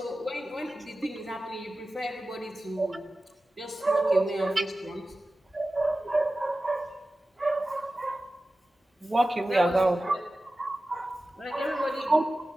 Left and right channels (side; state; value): both; normal; correlation 0.95